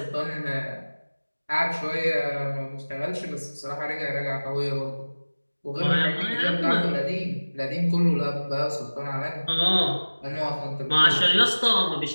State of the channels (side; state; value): both; inverted; correlation -1.00